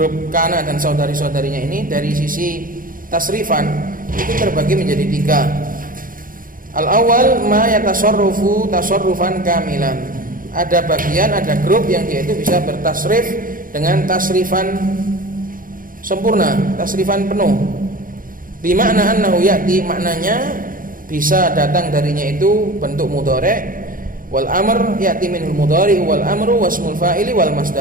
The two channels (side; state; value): left; late; 0.40 ms